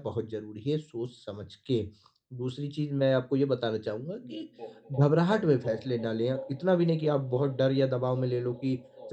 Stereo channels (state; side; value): identical; both; correlation 1.00